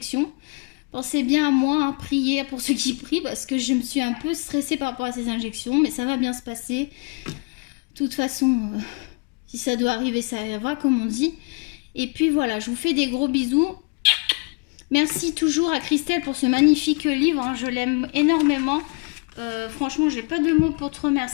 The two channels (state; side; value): quieter; right; 32.1 dB